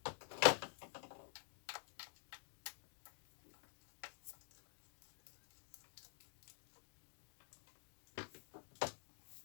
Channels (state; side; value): silent; right; digital silence